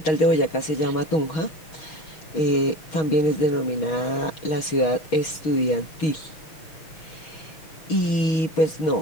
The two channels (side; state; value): right; late; 6.3 ms